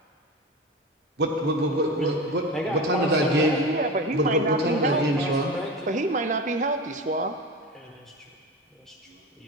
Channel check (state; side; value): normal; both; correlation 0.27